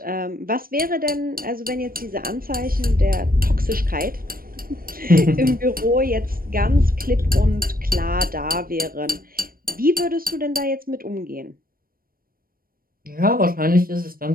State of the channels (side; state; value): left; late; 0.42 ms